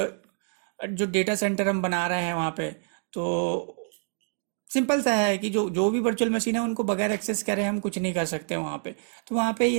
जो डेटा सेंटर हम बना रहे हैं वहाँ पे, तो सिंपल सा है कि जो जो भी वर्चुअल मशीन है उनको बगैर एक्सेस करे हम कुछ नहीं कर सकते वहाँ पे। तो वहाँ पे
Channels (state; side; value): silent; left; digital silence